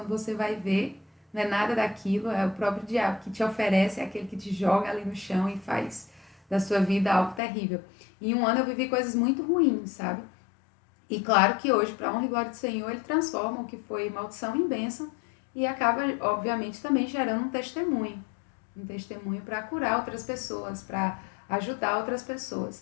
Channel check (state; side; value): drops out; right; at 7.4 s